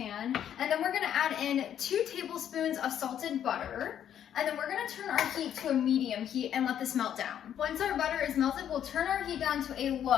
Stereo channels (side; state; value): right; quieter; 9.8 dB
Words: and then we're gonna add in 2 tablespoons of salted butter. And then we're gonna turn our heat to a medium heat and let this melt down. Once our butter is melted, we'll turn our heat down to a